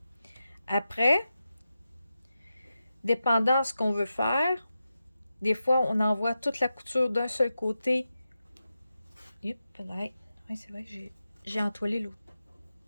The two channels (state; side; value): inverted; both; correlation -0.91